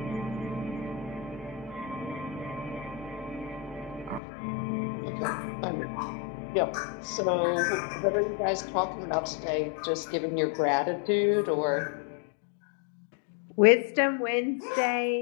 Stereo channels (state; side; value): drops out; right; at 4.2 s